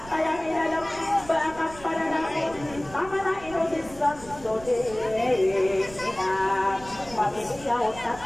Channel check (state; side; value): noise; right; rumble, 18 dB below the sound